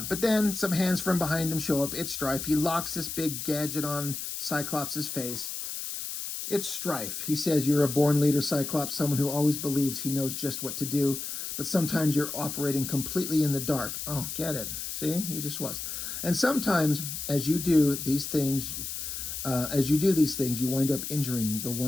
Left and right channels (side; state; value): left; noise; hiss, 6 dB below the sound